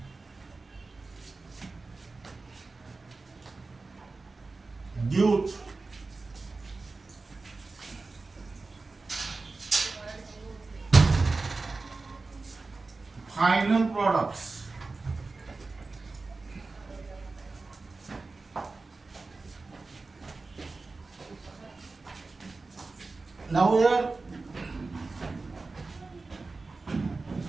due final products. Now here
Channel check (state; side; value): quieter; left; 3.7 dB